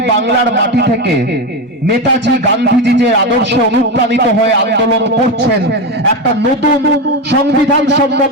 বাংলার মাটি থেকে নেতাজি গান্ধীজি যে আদর্শে অনুপ্রাণিত হয়ে আন্দোলন করছেন, একটা নতুন সংবিধান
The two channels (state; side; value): normal; both; correlation 0.15